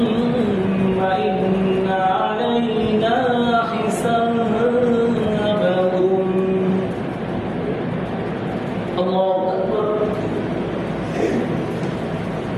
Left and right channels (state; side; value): identical; both; correlation 1.00